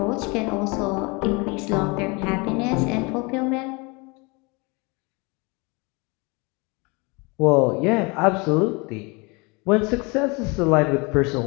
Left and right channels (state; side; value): quieter; right; 28.3 dB